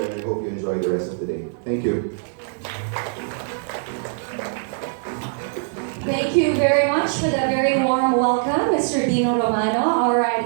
and I hope you enjoy the rest of the day. Thank you. Thank you very much for that very warm welcome, Mr. Dino Romano. All right,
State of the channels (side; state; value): left; silent; digital silence